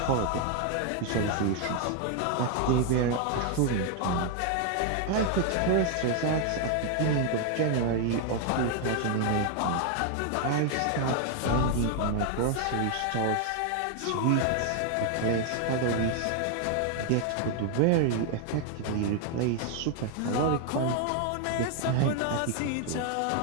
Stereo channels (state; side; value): different; both; correlation 0.00